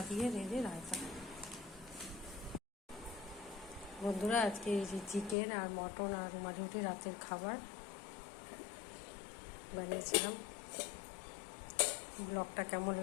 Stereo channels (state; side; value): drops out; right; at 5.4 s